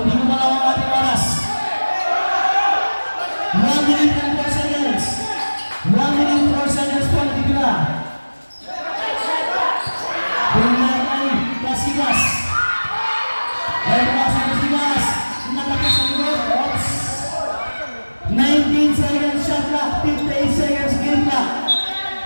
ko malaw ang ating oras. 1 minute and 4 seconds. 1 minute and 4 seconds po natitira. Bumalik ay Kasigas. Ay pumasa Kasigas. Nakapit sa likod. Oops. 19 seconds shot clock. 58 seconds game clock.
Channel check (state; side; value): inverted; both; correlation -1.00